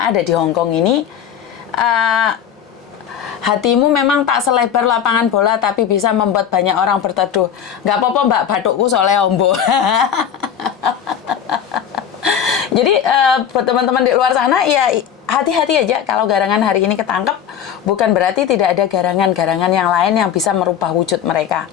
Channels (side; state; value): right; quieter; 8.8 dB